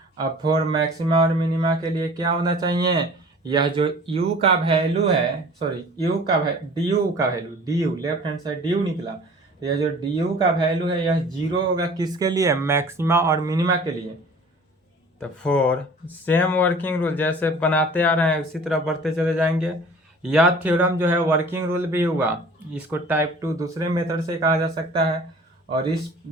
अब फॉर मैक्सिमा और मिनिमा के लिए क्या होना चाहिए, यह जो u का वैल्यू है, सॉरी u का du का value, du left hand side du निकला, तो यह जो du का वैल्यू है यह 0 होगा किसके लिए, मैक्सिमा और मिनिमा के लिए। तो फॉर सेम वर्किंग रूल जैसे बनाते आ रहे हैं उसी तरह बढ़ते चले जाएंगे। यह थ्योरम जो है वर्किंग रूल भी हुआ, इसको टाइप 2 दूसरे मेथड से कहा जा सकता है, और इस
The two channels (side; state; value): both; normal; correlation 0.46